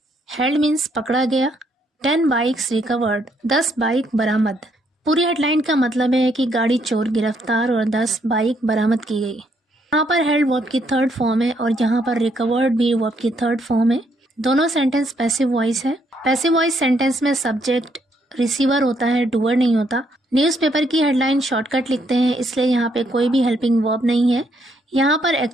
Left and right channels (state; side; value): normal; both; correlation 0.72